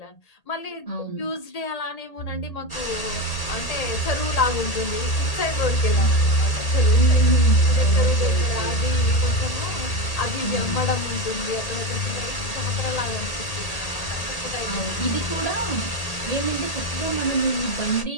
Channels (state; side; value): late; right; 1.8 ms